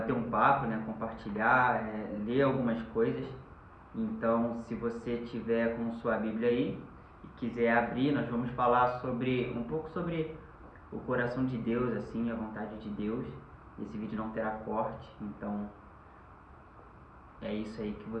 um papo, né? Compartilhar, ler algumas coisas. Então, se você tiver com sua Bíblia aí e quiser abrir, nós vamos falar sobre um pouco sobre o coração de Deus, assim, a vontade de Deus. Esse vídeo não terá corte, então é isso aí que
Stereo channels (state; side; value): identical; both; correlation 1.00